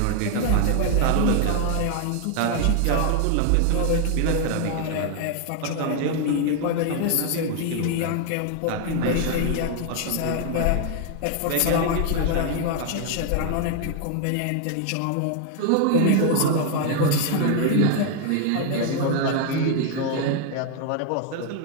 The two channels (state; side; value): different; both; correlation 0.00